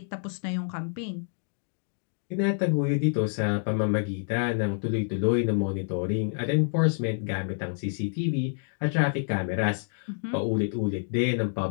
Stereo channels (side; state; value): right; silent; digital silence